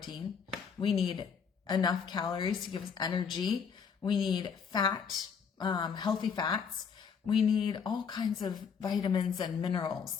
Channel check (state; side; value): quieter; right; 6.5 dB